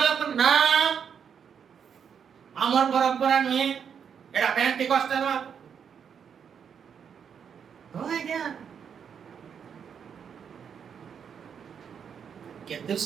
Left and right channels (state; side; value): quieter; left; 7.4 dB